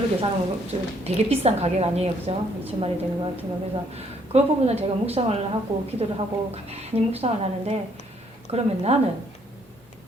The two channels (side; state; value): both; normal; correlation 0.67